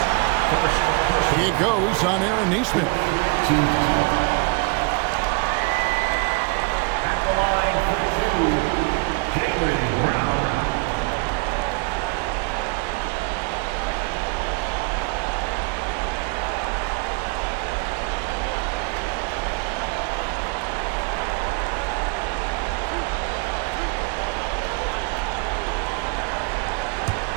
It goes on Aaron Nesmith. Team foul. At the line for 2, Jaylen Brown.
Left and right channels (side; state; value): left; quieter; 32.0 dB